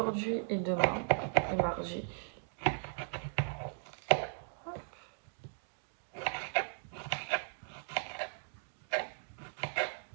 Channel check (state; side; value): silent; left; digital silence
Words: et demain, et mardi. Hop.